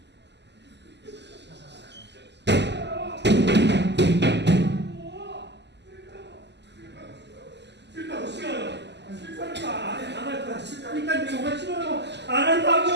싫다고 싫어요. 싫다니까 안 할 거야. 싫다니까 정말 싫어요. 안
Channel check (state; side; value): late; left; 0.50 ms